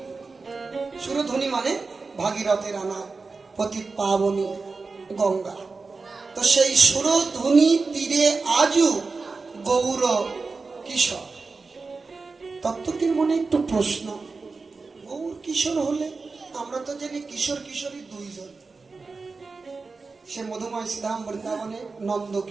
সুরধ্বনি মানে ভাগীরথের আনা পতিত পাবনী গঙ্গা। তো সেই সুরধ্বনি তীরে আজও গৌর কিশোর। তত্ত্বটির মনে একটু প্রশ্ন, গৌর কিশোর হলে আমরা তো জানি কিশোর কিশোরী দুইজন, সে মধুময় শ্রীধাম বৃন্দাবনে নন্দ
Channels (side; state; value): left; quieter; 4.2 dB